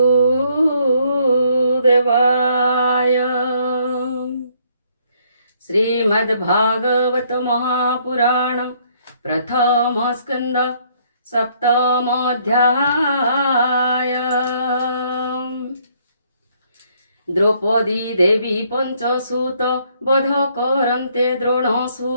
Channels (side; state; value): both; inverted; correlation -0.67